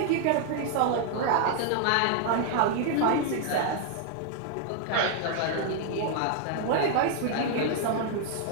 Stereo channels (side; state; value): both; different; correlation 0.00